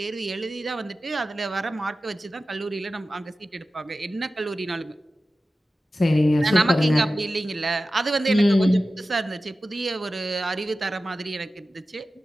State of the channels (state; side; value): normal; both; correlation 0.94